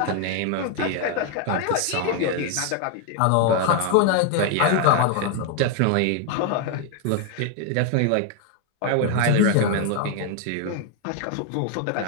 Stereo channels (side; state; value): both; different; correlation 0.01